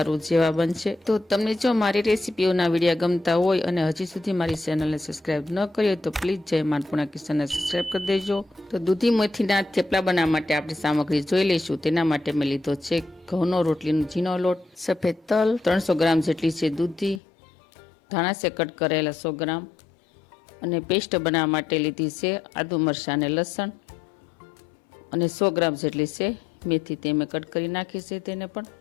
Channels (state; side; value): drops out; right; at 17.2 s